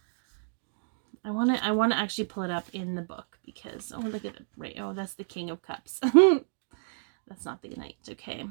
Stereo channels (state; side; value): silent; left; digital silence